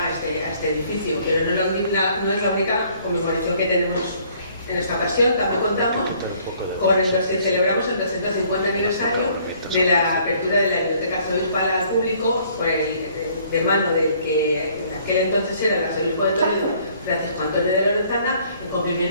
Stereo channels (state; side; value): inverted; both; correlation -0.60